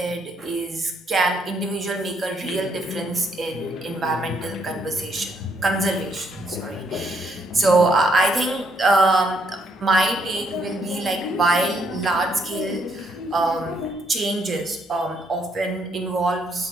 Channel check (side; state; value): both; normal; correlation 0.72